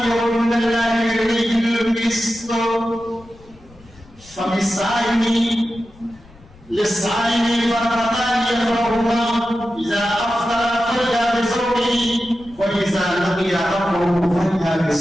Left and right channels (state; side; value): noise; left; rumble, 25 dB below the sound